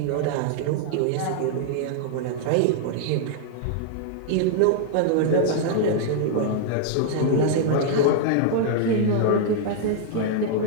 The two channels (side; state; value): both; different; correlation -0.01